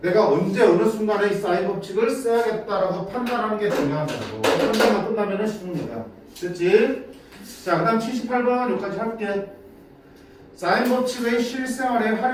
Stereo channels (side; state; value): both; identical; correlation 1.00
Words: 내가 언제 어느 순간에 이 사인 법칙을 써야겠다라고 판단하는 게 중요한 거고 판단만 끝나면은 쉬운 거야. 됐지? 자, 그 다음 78번 여기까지 할게. 사인 법칙의 실생활의